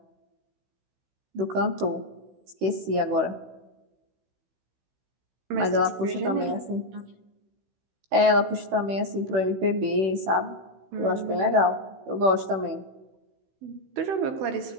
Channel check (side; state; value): left; late; 16 ms